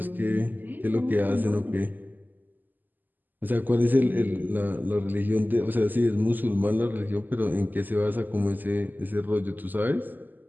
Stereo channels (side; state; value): left; late; 0.087 ms